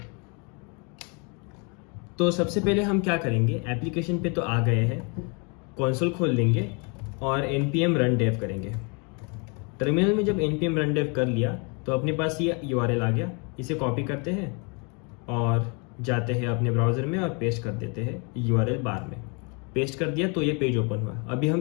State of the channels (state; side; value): quieter; right; 33.8 dB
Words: तो सबसे पहले हम क्या करेंगे, एप्लीकेशन पे तो आ गए हैं, कंसोल खोल लेंगे और npm run dev करेंगे। टर्मिनल में जब npm run dev कर लिया तो अपने पास ये URL आ गया। इसे कॉपी करते हैं और जाते हैं अपने ब्राउज़र में और पेस्ट कर देते हैं URL बार में। पेस्ट कर दिया तो ये पेज ओपन हुआ। अभी हम